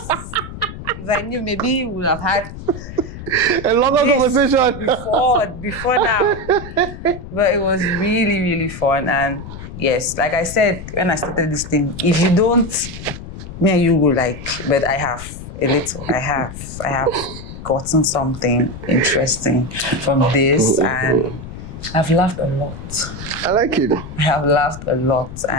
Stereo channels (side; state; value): left; noise; rumble, 11 dB below the sound